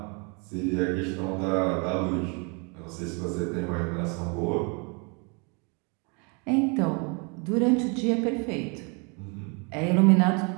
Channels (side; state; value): left; quieter; 33.4 dB